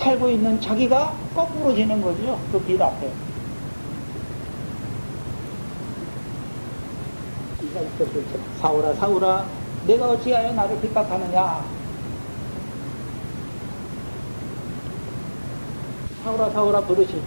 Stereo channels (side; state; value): both; inverted; correlation -1.00